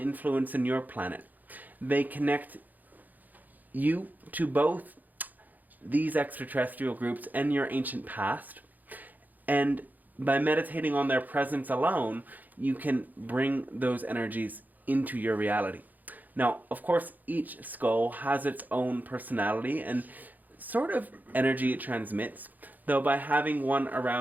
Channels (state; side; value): late; left; 0.083 ms